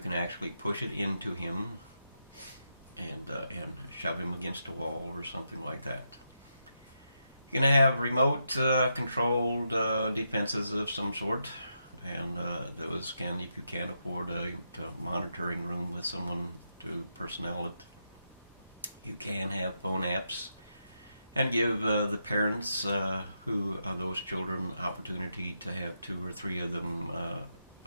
actually push it into him and shove him against a wall or something like that. You're going to have remote controlled defenses of some sort, and those can, if you can't afford a monitoring room with someone to personnel it, you can have phone apps and give the parents who are those children opportunity to have 2 or 3 of them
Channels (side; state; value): both; inverted; correlation -0.83